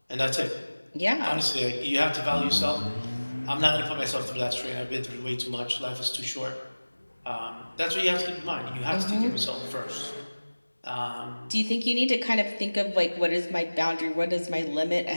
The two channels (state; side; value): inverted; both; correlation -1.00